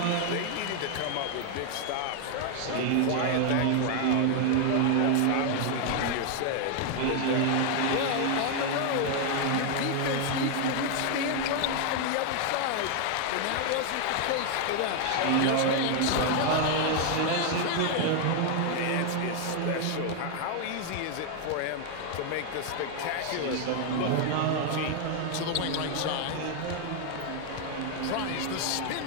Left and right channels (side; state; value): both; different; correlation 0.00